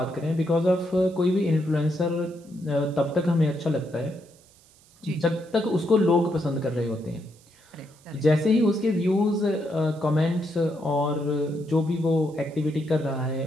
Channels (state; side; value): noise; right; hiss, 29 dB below the sound